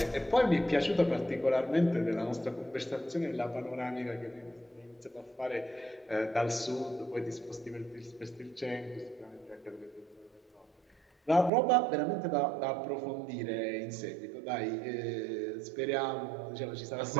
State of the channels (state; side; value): drops out; left; at 11.5 s